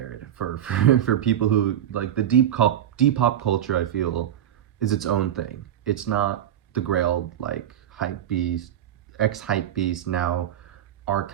for people who like the Depop culture. I feel is its own thing. It's not the Grail, like hype beast, ex-hype beast, now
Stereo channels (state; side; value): quieter; left; 10.8 dB